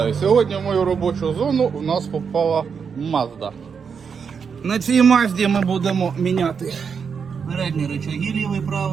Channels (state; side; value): quieter; left; 6.3 dB